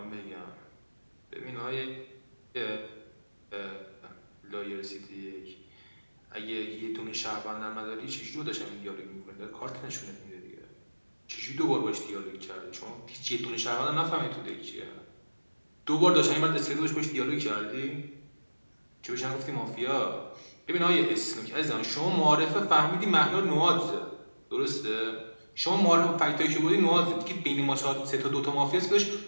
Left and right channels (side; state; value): both; inverted; correlation -1.00